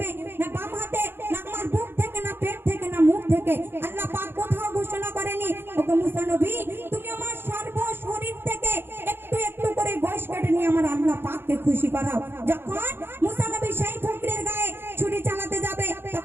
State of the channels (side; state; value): left; late; 0.11 ms